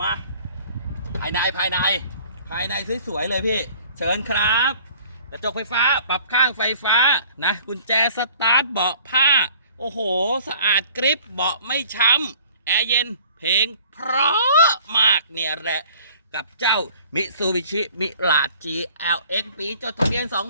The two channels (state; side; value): inverted; both; correlation -0.52